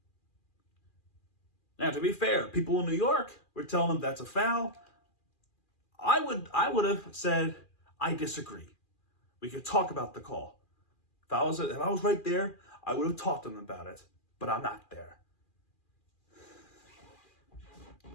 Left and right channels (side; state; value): right; late; 2.4 ms